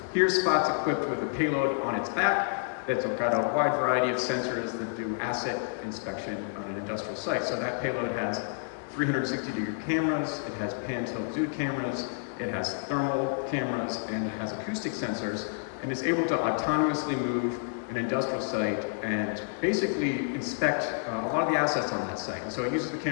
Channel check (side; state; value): right; silent; 58 dB below the other